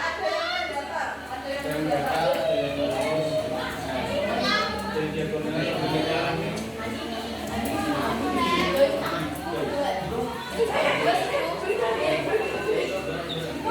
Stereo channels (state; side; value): identical; both; correlation 1.00